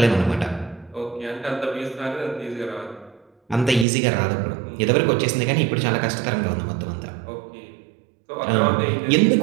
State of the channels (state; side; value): drops out; left; at 3.9 s